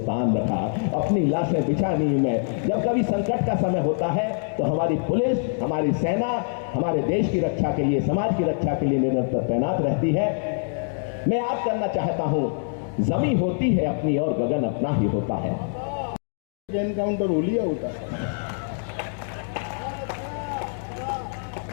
रखा, अपनी लाशें बिछा नींव में। जब कभी संकट का समय होता है तो हमारी पुलिस, हमारी सेना हमारे देश की रक्षा के लिए, समाज की रक्षा के लिए निरंतर तैनात रहती है। मैं याद करना चाहता हूं, जमीन होती है अपनी और गगन अपना ही होता है। एनकाउंटर हो लिया होता है,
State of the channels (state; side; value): silent; right; digital silence